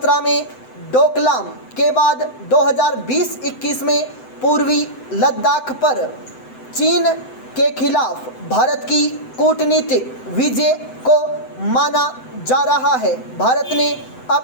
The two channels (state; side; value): late; right; 7.9 ms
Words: में डोकलाम के बाद 2020-21 में पूर्वी लद्दाख पर चीन के खिलाफ भारत की कूटनीतिक विजय को माना जा रहा है। भारत ने